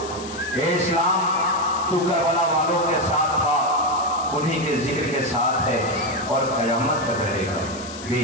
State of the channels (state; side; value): noise; left; hiss, 14 dB below the sound